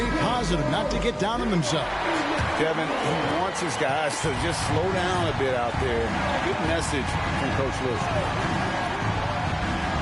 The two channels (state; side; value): identical; both; correlation 1.00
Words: positive, not to get down on themselves. Kevin, he wants his guys to just slow down a bit out there. Good message from Coach Lue.